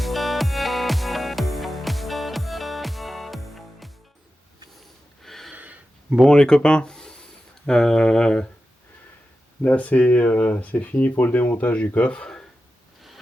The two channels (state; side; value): normal; both; correlation 0.92